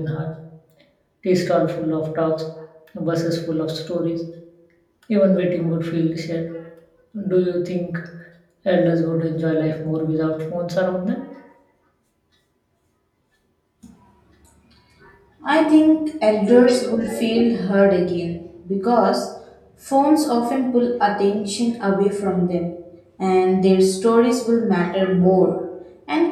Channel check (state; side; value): identical; both; correlation 1.00